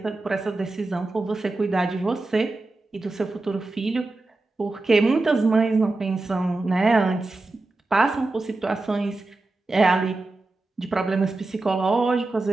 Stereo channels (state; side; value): quieter; left; 3.1 dB